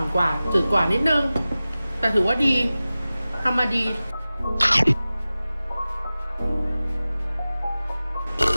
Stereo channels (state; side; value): inverted; both; correlation -0.96